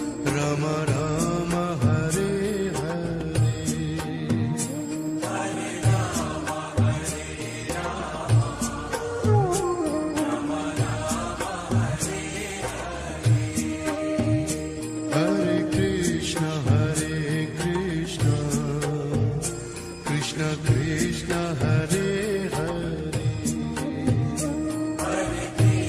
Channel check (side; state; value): both; identical; correlation 1.00